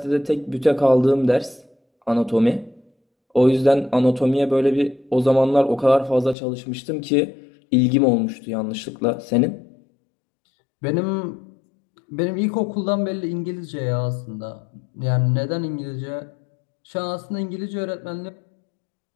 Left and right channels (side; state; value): right; drops out; at 6.4 s